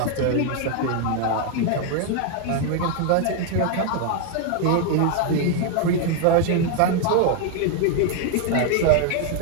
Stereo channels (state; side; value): different; both; correlation 0.01